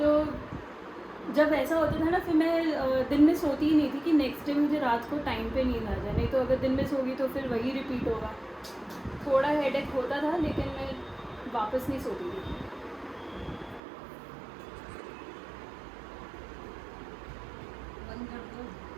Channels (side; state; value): left; drops out; at 13.8 s